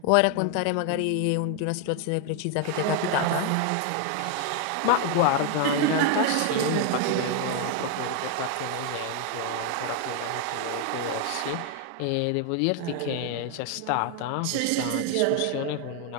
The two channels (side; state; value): both; different; correlation 0.01